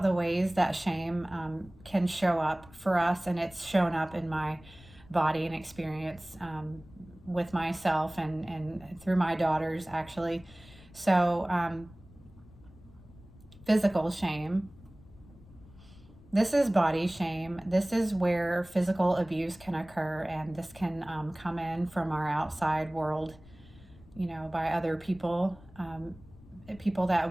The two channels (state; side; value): noise; left; rumble, 22 dB below the sound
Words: the ways that shame can show up for us, and it's shown up in my body and experience with myself and through my daughters, actually. So physical shame. This is body shame. This is where physical abuse can occur, and this can come in from our outside world, by other people, people